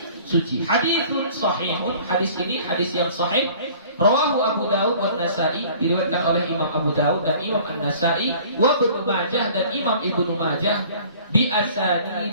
Haditsun sahihun, hadis ini hadis yang sahih. Rawahu Abu Dawud wa Nasa'i, diriwayatkan oleh Imam Abu Dawud dan Imam An-Nasa'i, wa Ibnu Majah dan Imam Ibnu Majah, bi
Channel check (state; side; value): inverted; both; correlation -0.49